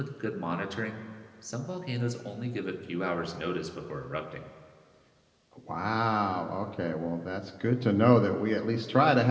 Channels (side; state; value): both; identical; correlation 1.00